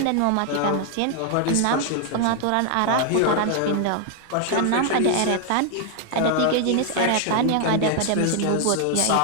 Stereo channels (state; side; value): different; both; correlation 0.00